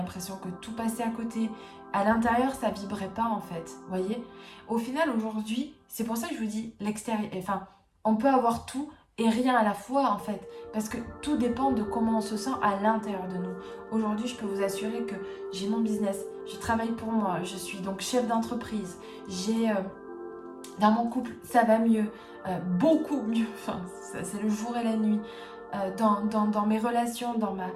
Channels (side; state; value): both; identical; correlation 1.00